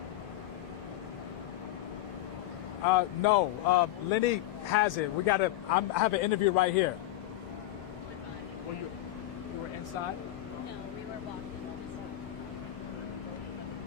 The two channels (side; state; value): right; quieter; 14.6 dB